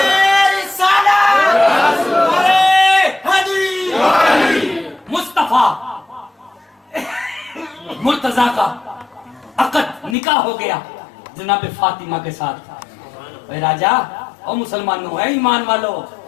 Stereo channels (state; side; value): drops out; right; at 10.2 s